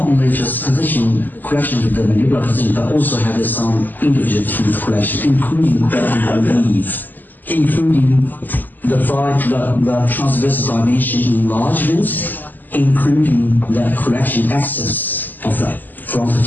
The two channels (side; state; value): right; late; 0.087 ms